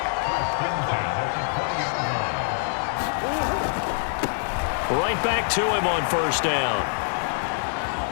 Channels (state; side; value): silent; right; digital silence